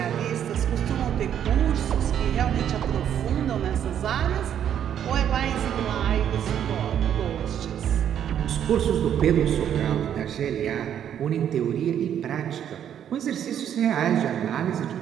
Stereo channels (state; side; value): quieter; left; 9.6 dB